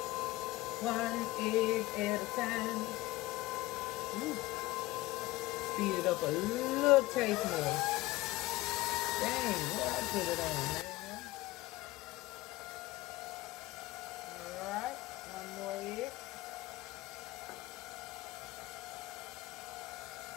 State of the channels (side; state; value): right; quieter; 19.0 dB